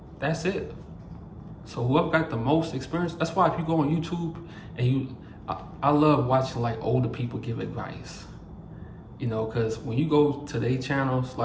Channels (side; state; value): both; identical; correlation 1.00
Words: That's it. So whoever got the most experience, that's why if you go on YouTube and I love watching like older people give advice. You know, because when you go to their channels,